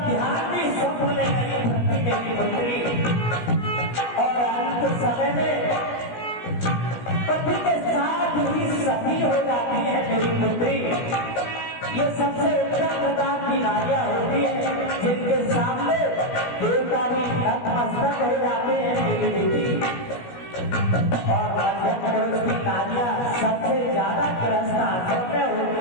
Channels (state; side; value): late; right; 17 ms